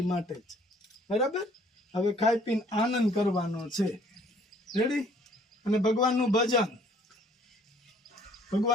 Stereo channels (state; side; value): normal; both; correlation 0.59